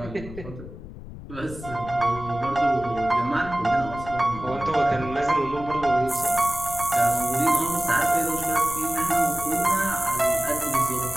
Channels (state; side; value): noise; left; rumble, 13 dB below the sound